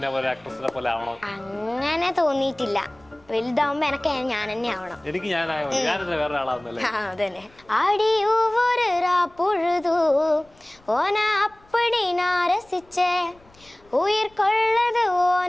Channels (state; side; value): noise; left; rumble, 29 dB below the sound